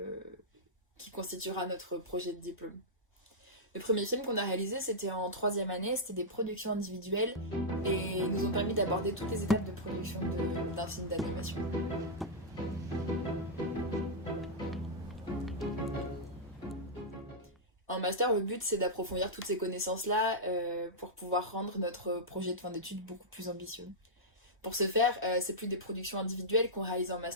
qui constituera notre projet de diplôme. Le premier film qu'on a réalisé, c'était en troisième année, c'était des productions individuelles et nous ont permis d'aborder toutes les étapes de production d'un film d'animation. En master, le but c'est d'approfondir toutes ces connaissances-là pour pouvoir rendre notre projet de fin d'études beaucoup plus ambitieux. Pour ce faire, c'est plus des productions individuelles qu'on réalise en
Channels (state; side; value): normal; both; correlation -0.08